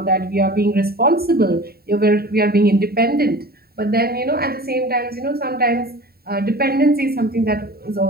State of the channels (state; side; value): late; left; 0.45 ms